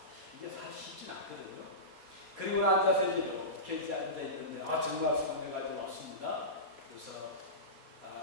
이게 사실 쉽진 않거든요. 그리고 앉아서 이렇게 앉아있는데 정말 손녀가 왔습니다. 그래서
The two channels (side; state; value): left; late; 4.2 ms